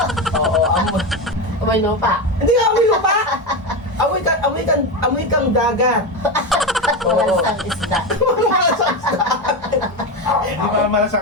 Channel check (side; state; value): both; normal; correlation 0.16